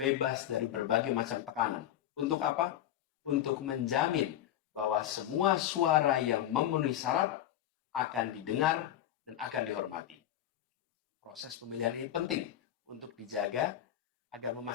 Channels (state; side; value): quieter; right; 11.7 dB